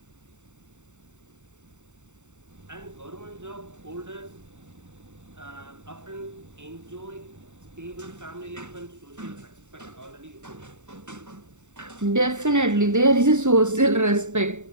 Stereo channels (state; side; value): late; left; 0.84 ms